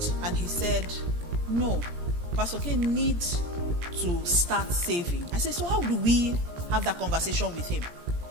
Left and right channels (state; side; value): late; left; 18 ms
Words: and he said, no, Pastor K needs to start saving. I said, so how do we have that conversation with him?